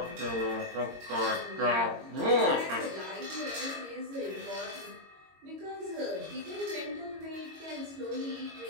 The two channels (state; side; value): late; left; 22 ms